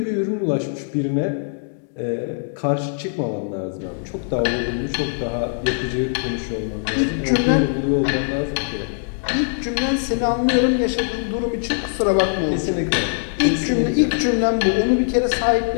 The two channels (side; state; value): right; silent; digital silence